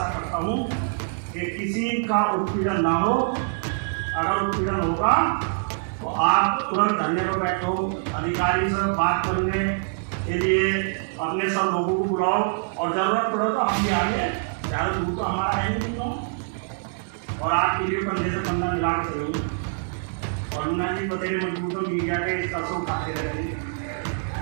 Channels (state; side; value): silent; left; 60 dB below the other